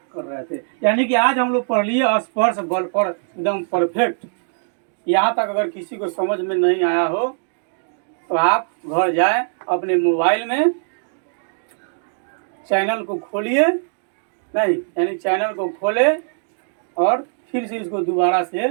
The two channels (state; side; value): silent; left; digital silence